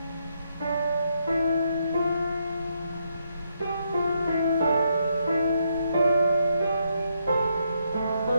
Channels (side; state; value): both; inverted; correlation -0.77